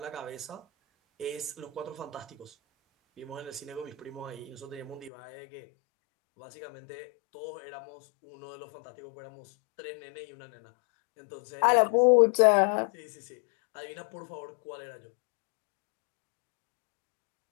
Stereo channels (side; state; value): right; drops out; at 5.1 s